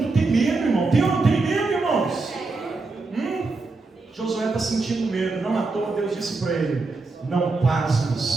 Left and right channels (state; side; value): quieter; left; 3.7 dB